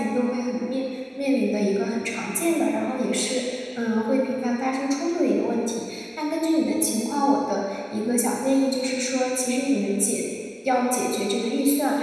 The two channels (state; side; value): identical; both; correlation 1.00